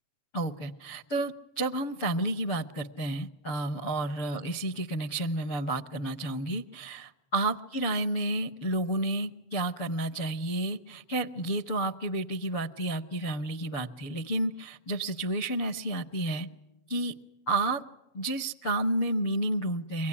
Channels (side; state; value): right; late; 7.5 ms